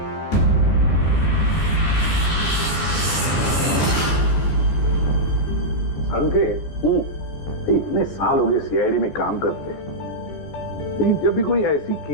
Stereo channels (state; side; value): late; right; 14 ms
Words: संकेत, इतने साल हो गए सीआईडी में काम करते, लेकिन जब भी कोई ऐसी